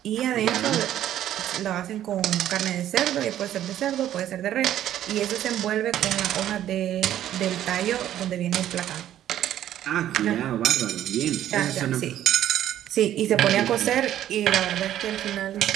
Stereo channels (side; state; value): left; quieter; 11.8 dB